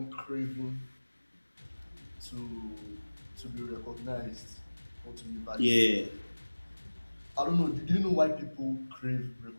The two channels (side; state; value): both; inverted; correlation -1.00